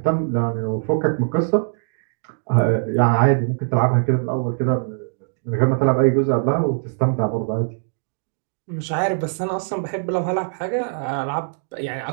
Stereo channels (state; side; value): silent; left; digital silence